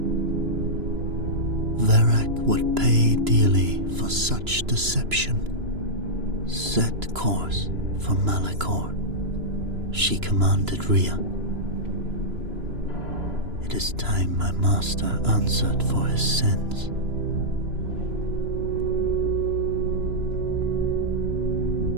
Verac would pay dearly for such deception. "Set course for Malachor," she commanded Rhea. "It is time my master answered for his sins."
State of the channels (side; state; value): left; late; 3.0 ms